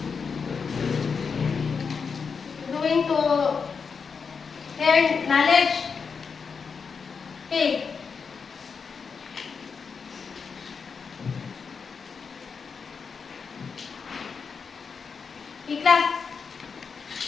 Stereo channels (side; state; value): right; quieter; 5.6 dB